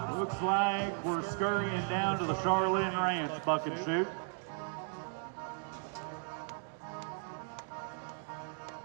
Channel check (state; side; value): silent; left; 54 dB below the other